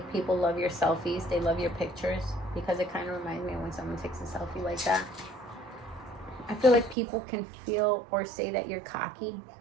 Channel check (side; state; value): left; drops out; at 7.0 s